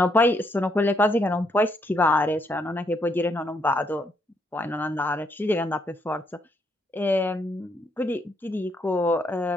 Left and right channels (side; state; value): both; normal; correlation 0.74